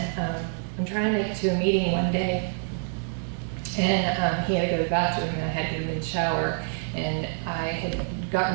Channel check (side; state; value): left; silent; digital silence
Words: I'm trying to make it to a meeting one day. And he had to go to the bathroom, and I had to get him in the shower, and I had